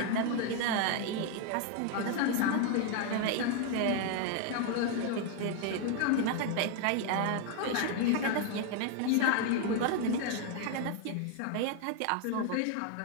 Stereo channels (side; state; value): both; different; correlation 0.01